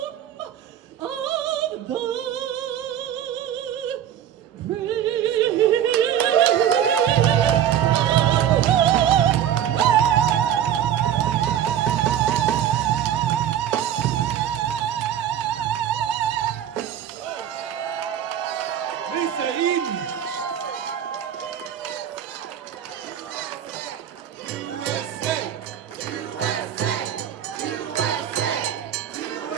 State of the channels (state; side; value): quieter; left; 10.1 dB